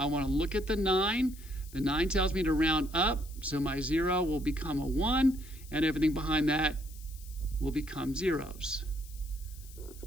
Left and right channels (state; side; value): noise; left; hiss, 20 dB below the sound